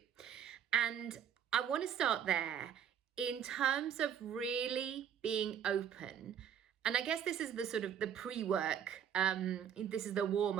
And I want to start there in terms of really being open. And I guess this is the sort of the pre-work. This is the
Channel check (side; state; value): left; quieter; 8.8 dB